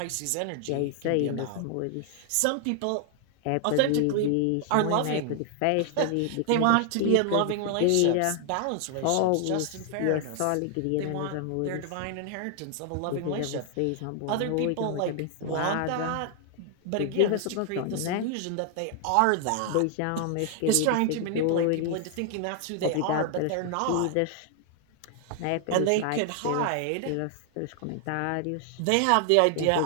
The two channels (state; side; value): different; both; correlation 0.00